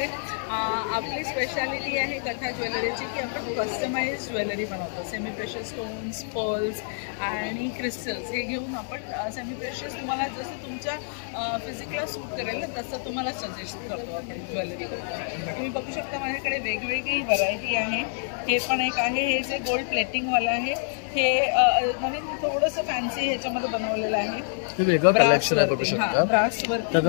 आपली स्पेशालिटी आहे कथा ज्वेलरीची की आपण कस्टमाइज ज्वेलरी बनवतो. सेमी प्रेशस स्टोन्स, पर्ल्स आणि क्रिस्टल्स हे घेऊन आपण सेमी प्रेशस तुम्हाला जसं तुमच्या फिजिकला सूट करेल ना तसं तुम्हाला सजेस्ट करतो आपण ज्वेलरी. तुम्ही बघू शकता माझ्याकडे वेगवेगळी व्हरायटी आहे. हे पण एक आहे, हे जे गोल्ड प्लेटिंगवाला आहे, हे नवीन थोडंसं फॅन्सी ह्याच्यामध्ये बनवलेलं आहे. हे वेगळं कलेक्शन आहे बघू शकता.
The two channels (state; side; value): silent; right; digital silence